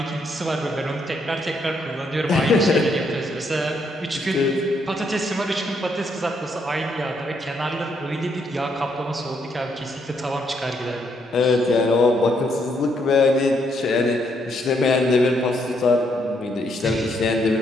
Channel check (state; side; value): normal; both; correlation 0.74